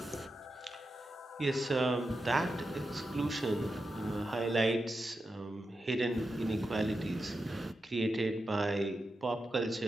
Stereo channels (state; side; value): normal; both; correlation 0.89